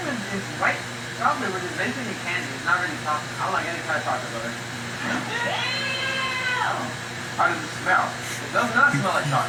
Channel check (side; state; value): both; identical; correlation 1.00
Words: white chocolate, which is basically candy. It's not really chocolate. I don't like any kind of chocolate, brother. How does it smell? It does not smell like